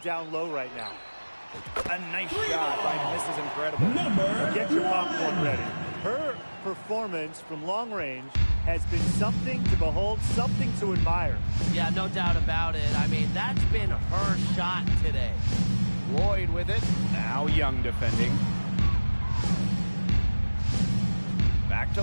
down low right now. A nice shot by Mrs. Incredible. Get your popcorn ready. Her performance from long range has been something to behold, something to admire. Yeah, no doubt about it. I mean, that's been her shot today. Lloyd with it. Now Young defending. Back to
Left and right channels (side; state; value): both; inverted; correlation -1.00